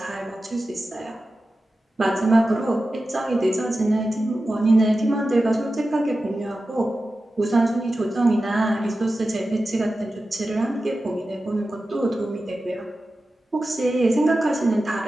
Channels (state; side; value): normal; both; correlation 0.93